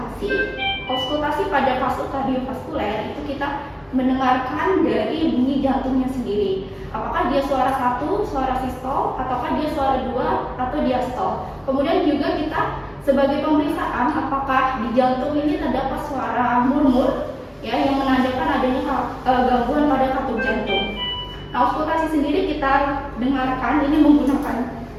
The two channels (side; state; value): both; identical; correlation 1.00